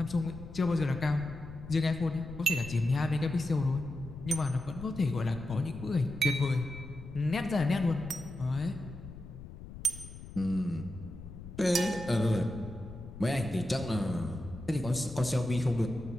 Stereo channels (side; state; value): left; noise; rumble, 13 dB below the sound